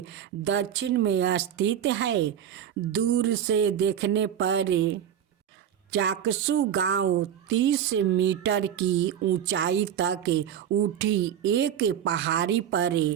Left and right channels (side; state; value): left; quieter; 9.5 dB